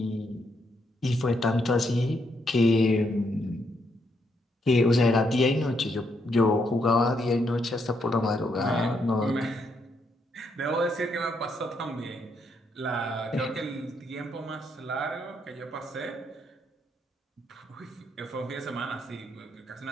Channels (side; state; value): both; normal; correlation 0.76